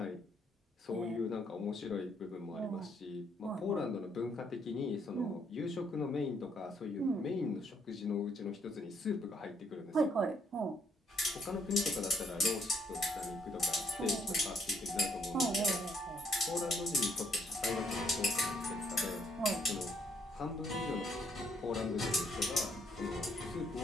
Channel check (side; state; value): both; normal; correlation 0.70